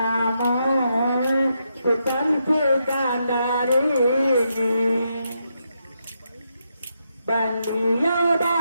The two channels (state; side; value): inverted; both; correlation -0.81